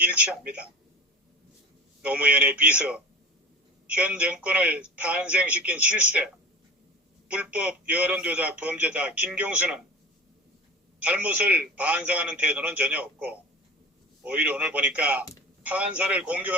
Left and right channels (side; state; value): both; normal; correlation 0.34